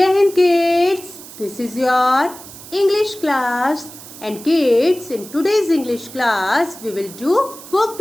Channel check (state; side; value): noise; right; hiss, 16 dB below the sound